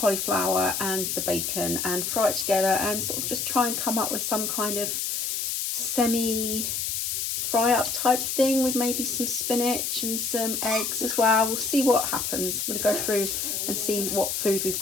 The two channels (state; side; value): noise; left; hiss, 1 dB below the sound